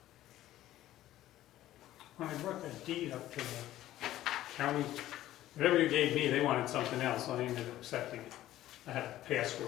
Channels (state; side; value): quieter; right; 14.1 dB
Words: When I brought that deed up to the county, whatever you gave me, they wanted something else, so I ended up accepting it. I had a